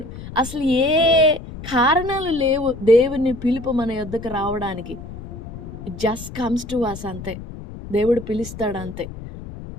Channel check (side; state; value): left; noise; rumble, 12 dB below the sound